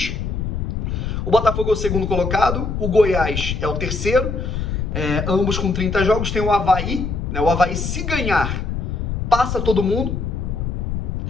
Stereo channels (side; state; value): left; noise; rumble, 3 dB below the sound